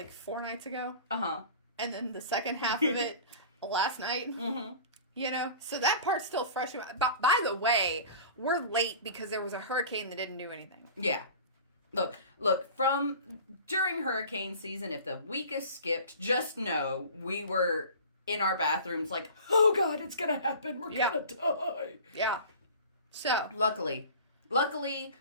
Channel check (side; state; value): both; inverted; correlation -0.40